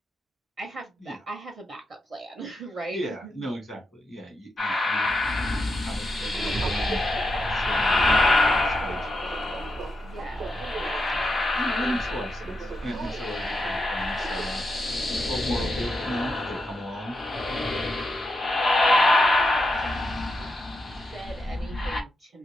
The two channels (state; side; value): normal; both; correlation 0.85